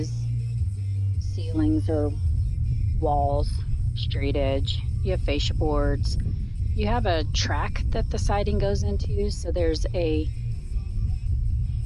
ceilings or walls, straight edge. You have fascia boards. You have a track that the siding goes into. So there's a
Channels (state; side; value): identical; both; correlation 1.00